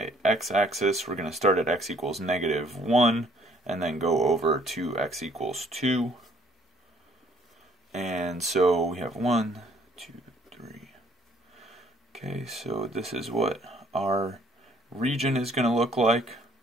x-axis. We're going to start at x equals -1 and then go over to x equals 2. And so we have 1, 2, 3. Okay, so this is what our region is going to look like.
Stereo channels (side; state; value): both; normal; correlation 0.61